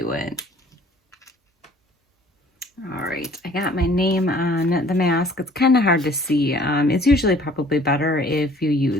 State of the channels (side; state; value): both; normal; correlation 0.54